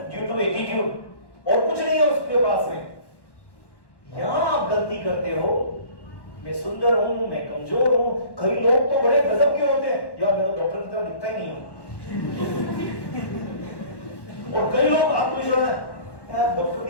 ड्यू टू एटीट्यूड, और कुछ नहीं है उसके पास में। यहां आप गलती करते हो, मैं सुंदर हूं, मैं कमजोर हूं, कई लोग तो बड़े गजब के होते हैं, यार मैं तो डॉक्टर की तरह दिखता ही नहीं हूं, और कई लोग आत्मविश्वास है, यार डॉक्टर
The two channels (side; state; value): right; late; 1.1 ms